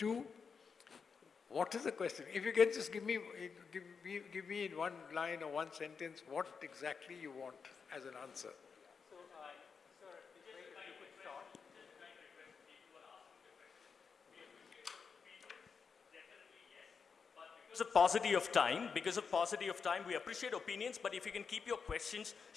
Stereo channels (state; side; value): quieter; right; 5.7 dB